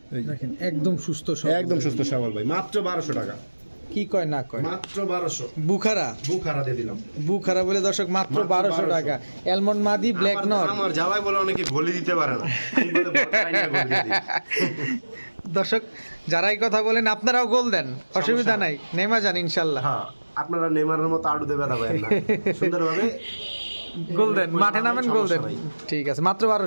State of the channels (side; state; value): both; inverted; correlation -1.00